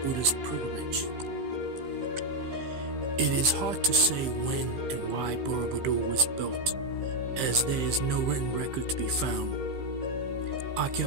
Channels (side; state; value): left; late; 15 ms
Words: Buddhist pilgrimage. It is hard to say when and why Borobudur was built, as there is no written record to be found.